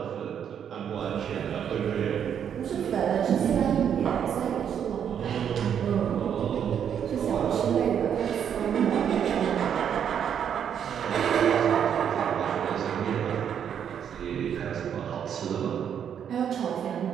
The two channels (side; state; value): left; quieter; 8.5 dB